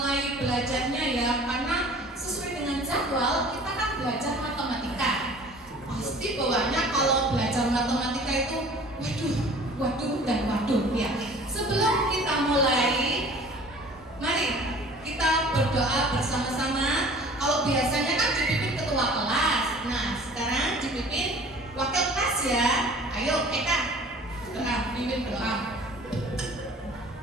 belajarnya ya, karena sesuai dengan jadwal kita kan belajar matematika. Pasti bawaannya kalau belajar matematika itu waduh dan waduh ya. Sebelum kita mulai, mari kita berdoa bersama-sama. Kalau biasanya kan dipimpin ketua kelas, nah sekarang dipimpin wakil kelas ya. Ayo Eka, doa, pimpin doa.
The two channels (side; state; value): both; normal; correlation 0.47